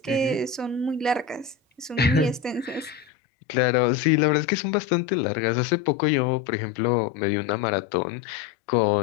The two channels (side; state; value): right; drops out; at 3.1 s